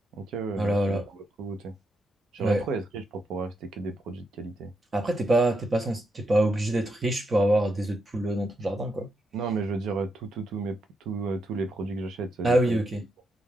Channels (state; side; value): normal; both; correlation 0.82